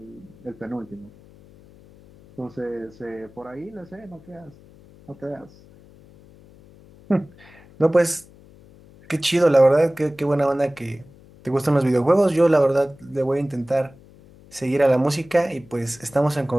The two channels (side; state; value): left; noise; hum, 24 dB below the sound